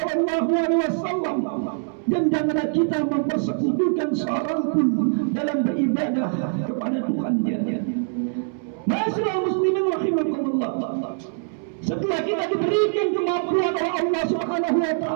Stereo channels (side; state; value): left; silent; 63 dB below the other